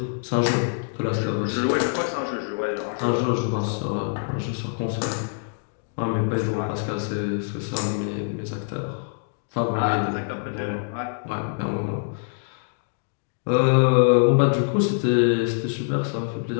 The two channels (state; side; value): silent; right; digital silence